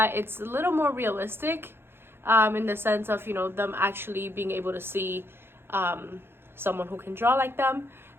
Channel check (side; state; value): left; late; 0.11 ms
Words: it's a little more realistic in the sense of, you know, them actually being able to see someone who can draw like them.